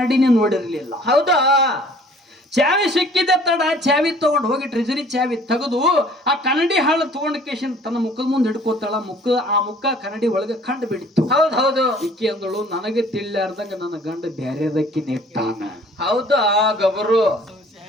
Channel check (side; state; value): both; normal; correlation 0.53